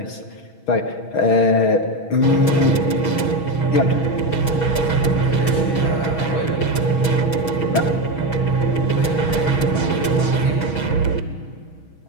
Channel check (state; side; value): late; right; 6.2 ms